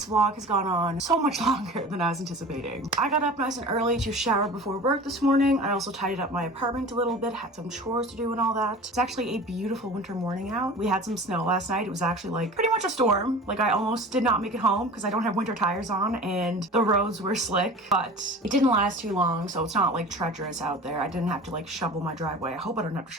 vlog has gone on so much longer than I was anticipating. I got up nice and early to shower before work this morning. I also tidied up my apartment a little bit, had some chores to do and all that. It's actually a beautiful winter morning out. We had some snow last night. It was actually like pretty much a storm. Like I almost did not make it home because I don't have winter tires on and the roads were slick, but it didn't last too long, so it's not like treacherous out there. I didn't have to like shovel my driveway. I hope I don't have to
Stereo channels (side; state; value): both; normal; correlation 0.38